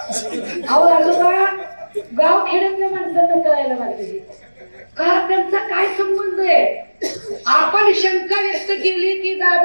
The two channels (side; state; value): both; inverted; correlation -1.00